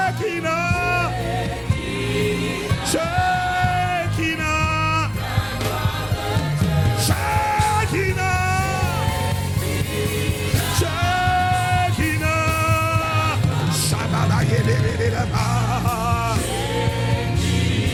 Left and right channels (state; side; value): identical; both; correlation 1.00